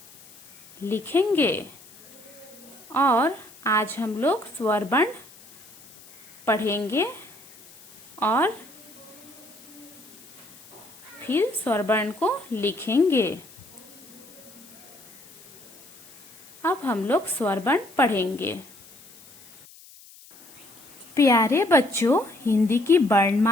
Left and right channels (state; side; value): noise; left; hiss, 22 dB below the sound